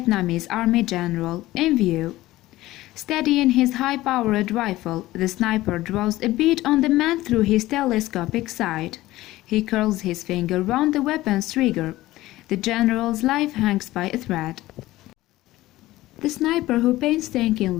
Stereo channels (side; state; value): right; quieter; 17.0 dB